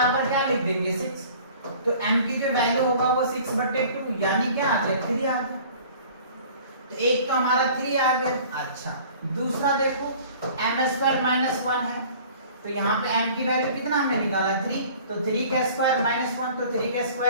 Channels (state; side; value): inverted; both; correlation -0.48